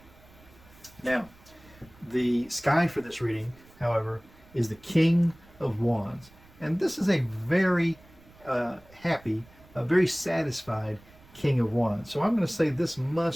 Now, the sky for this reading, however, is the King of Wands. And this is a very happy, very satisfied King of Wands. So I'm going to say this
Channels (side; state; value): right; noise; rumble, 25 dB below the sound